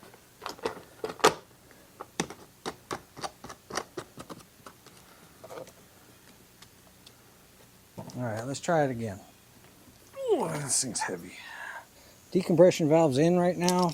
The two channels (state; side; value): identical; both; correlation 1.00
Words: Alright, let's try it again. Ooh, this thing's heavy. Decompression valve's in right now.